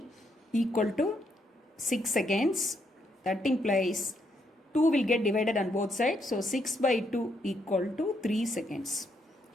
equal to 6 seconds. That implies 2 will get divided on both sides. So 6 by 2 equal to 3 seconds.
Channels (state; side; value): normal; both; correlation 0.76